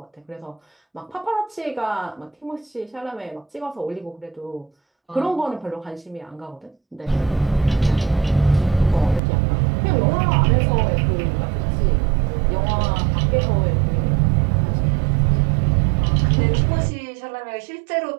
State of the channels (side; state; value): left; drops out; at 9.2 s